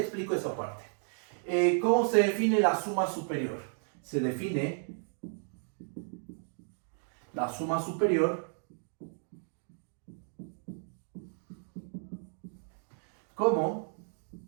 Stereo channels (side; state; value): left; silent; 55 dB below the other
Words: esa parte. ¿Cómo se define la suma superior? Se define la suma superior como